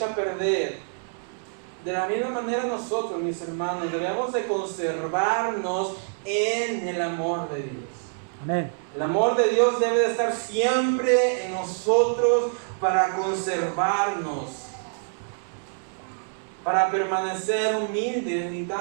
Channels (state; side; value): silent; left; digital silence